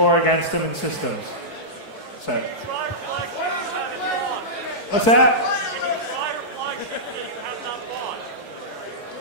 against them in systems. So. What's that?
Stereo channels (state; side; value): late; right; 4.6 ms